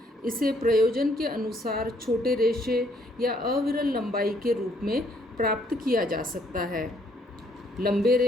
इसे प्रयोजन के अनुसार छोटे रेशे या अविरल लंबाई के रूप में प्राप्त किया जा सकता है। लंबे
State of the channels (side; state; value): both; normal; correlation 0.67